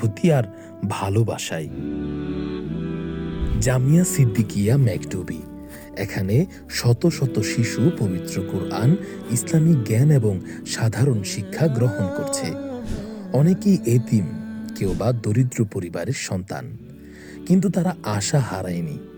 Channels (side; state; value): both; identical; correlation 1.00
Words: আর ভালোবাসায়। জামিয়া সিদ্দিকিয়া মেকটুবি, এখানে শত শত শিশু পবিত্র কোরআন, ইসলামিক জ্ঞান এবং সাধারণ শিক্ষা গ্রহণ করছে। অনেকেই এতিম, কেউ বা দরিদ্র পরিবারের সন্তান, কিন্তু তারা আশা হারায়নি,